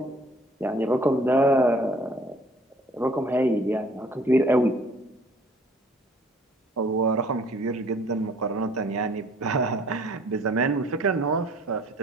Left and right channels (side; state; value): both; normal; correlation 0.56